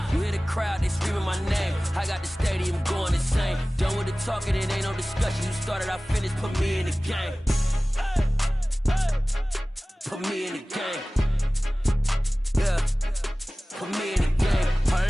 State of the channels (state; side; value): normal; both; correlation 0.98